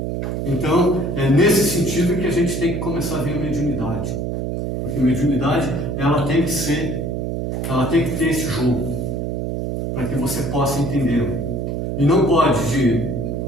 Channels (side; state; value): right; noise; hum, 2 dB below the sound